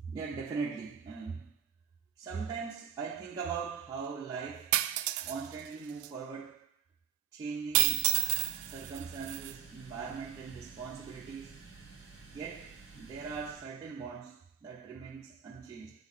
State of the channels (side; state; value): left; quieter; 9.9 dB